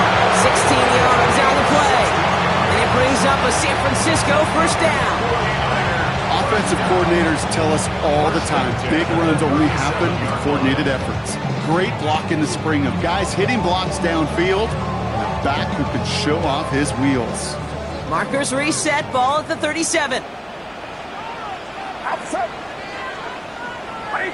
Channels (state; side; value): identical; both; correlation 1.00